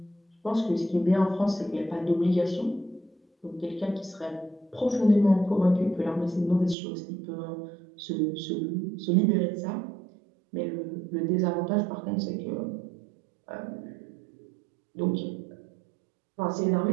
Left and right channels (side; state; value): left; drops out; at 6.8 s